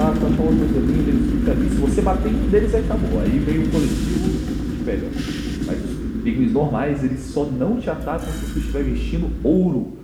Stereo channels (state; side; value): identical; both; correlation 1.00